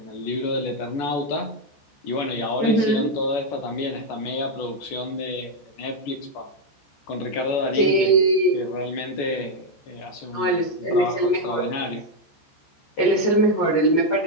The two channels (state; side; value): late; right; 14 ms